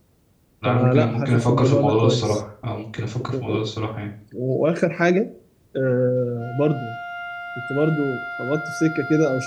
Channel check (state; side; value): identical; both; correlation 1.00